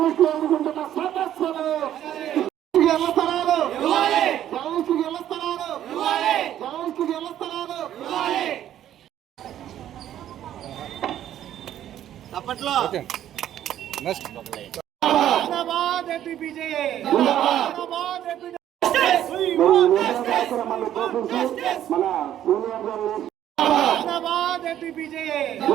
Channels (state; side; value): quieter; left; 11.5 dB